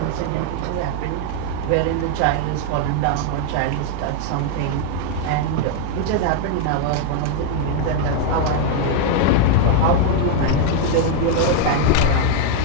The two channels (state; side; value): different; both; correlation 0.00